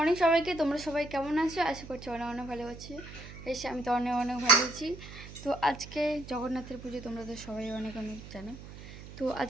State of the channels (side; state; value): right; noise; hum, 14 dB below the sound